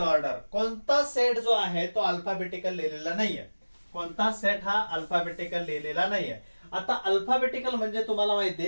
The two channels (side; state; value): both; inverted; correlation -1.00